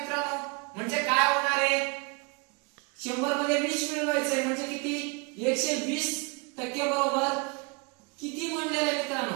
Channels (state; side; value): quieter; left; 31.3 dB